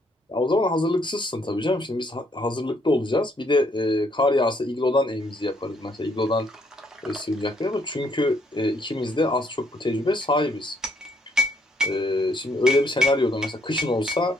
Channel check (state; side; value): normal; both; correlation 0.69